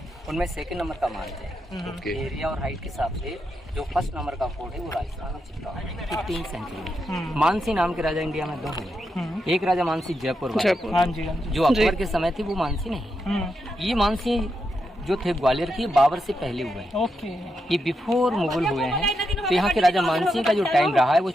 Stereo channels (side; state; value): both; normal; correlation 0.84